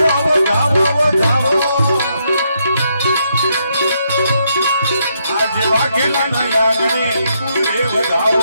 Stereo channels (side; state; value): both; inverted; correlation -0.77